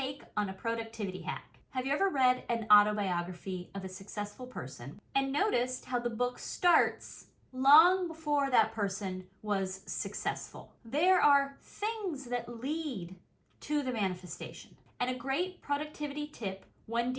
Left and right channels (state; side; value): identical; both; correlation 1.00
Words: on a productivity hack. Have you ever read an autobiography of a successful person and noticed how the book starts long before that person was successful? There are things that lead to the manifestation. And a great productivity tip when